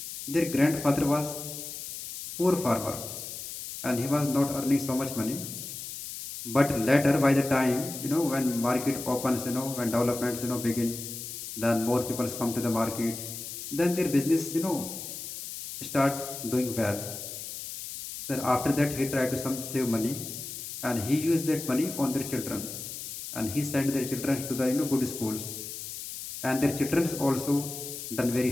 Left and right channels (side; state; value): left; noise; hiss, 9 dB below the sound